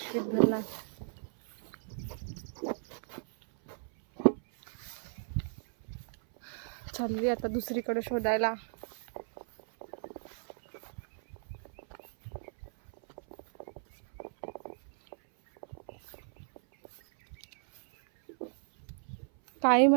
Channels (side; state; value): left; silent; 54 dB below the other